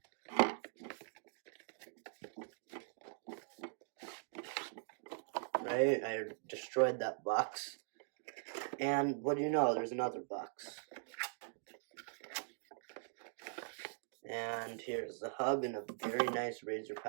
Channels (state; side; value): silent; left; digital silence